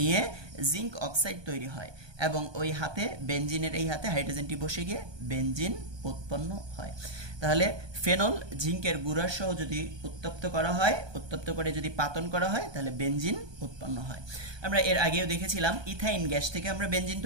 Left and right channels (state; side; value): late; left; 1.2 ms